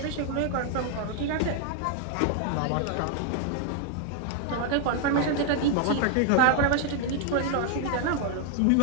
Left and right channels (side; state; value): both; different; correlation 0.00